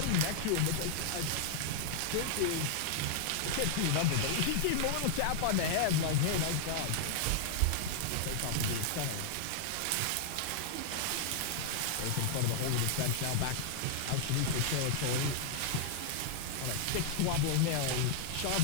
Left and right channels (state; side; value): different; both; correlation 0.00